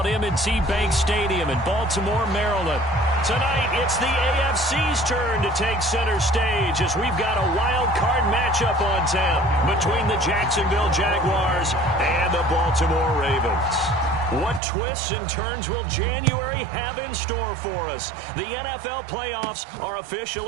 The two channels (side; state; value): left; drops out; at 14.6 s